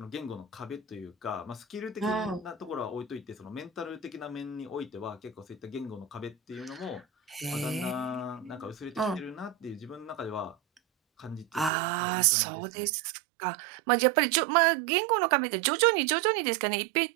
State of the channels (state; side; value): drops out; left; at 11.7 s